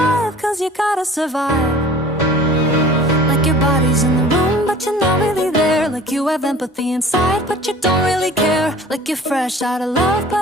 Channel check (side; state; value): both; normal; correlation 0.46